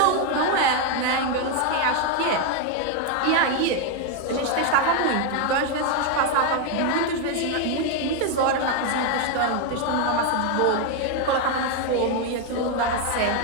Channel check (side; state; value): both; different; correlation 0.01